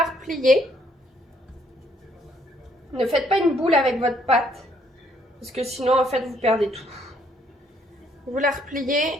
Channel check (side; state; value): both; normal; correlation 0.68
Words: repliez. Ne faites pas une boule avec votre pâte, parce que sinon, en fait, vous perdez tout. Vous la